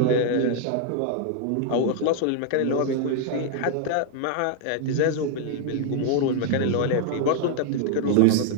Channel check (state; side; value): different; both; correlation 0.00